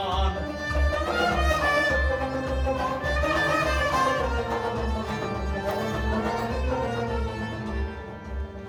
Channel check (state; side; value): identical; both; correlation 1.00